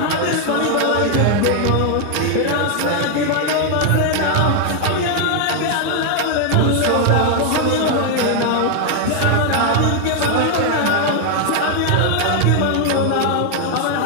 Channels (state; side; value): different; both; correlation 0.00